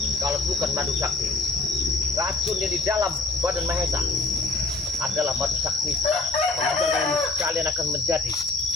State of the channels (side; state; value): right; quieter; 3.4 dB